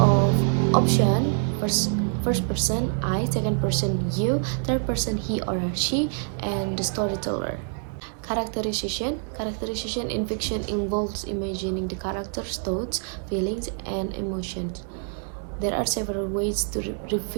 options. First person I, second person you, third person he or she, and the storyteller. Characterization. Characterization in fiction involves imagining the character's thoughts, feelings, and emotions. There are several ways to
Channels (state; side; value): silent; left; 56 dB below the other